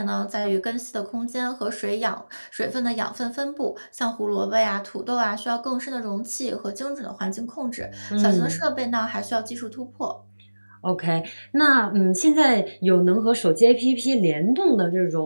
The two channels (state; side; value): inverted; both; correlation -1.00